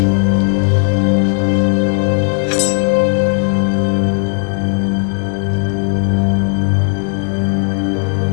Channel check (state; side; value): silent; right; digital silence